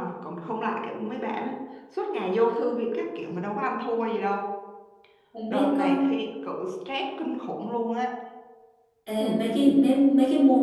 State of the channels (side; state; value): both; identical; correlation 1.00